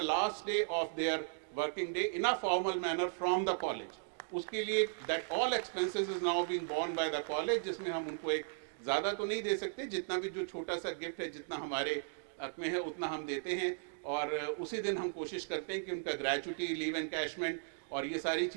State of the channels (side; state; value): left; silent; digital silence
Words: last day of their working day in a formal manner from the college. उसके लिए that all expenses is now being borne by the college, जिसमें हम उनको एक ज़्यादा तो नहीं दे सकते, जितना भी जो छोटा सा गिफ्ट है, जितना हमारे हक में है उतना हम देते हैं, और उसी दिन हम कोशिश करते हैं कि उनका ग्रेचुटी, लीव एनकैशमेंट और ये सारी